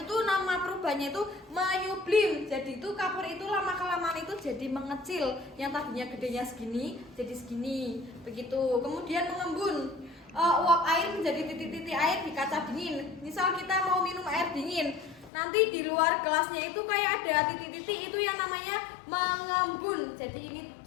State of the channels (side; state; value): right; drops out; at 15.3 s